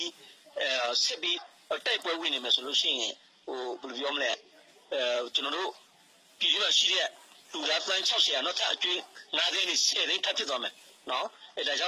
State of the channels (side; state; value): both; identical; correlation 1.00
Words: ီးစစ်ပြီးတိုက်ပွဲဝင်နေမယ်ဆိုလို့ရှိရင်ဟိုဘယ်လိုပြောမလဲကျွန်တော်တို့ပြည်သူ့ရှိတဲ့လူသားပန်း60နောက်ထပ်အကျွေး9သိန်းနဲ့10သိန်းထပ်ဖြစ်သွားမယ်နော်အဲဒါကြေ